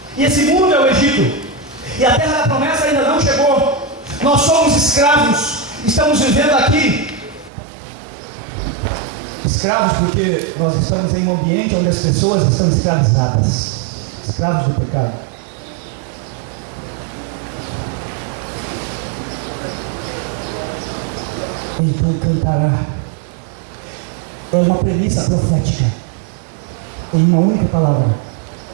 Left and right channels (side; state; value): left; drops out; at 7.5 s